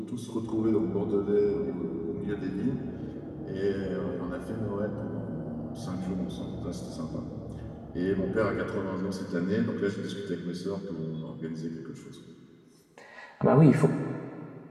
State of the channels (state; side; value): identical; both; correlation 1.00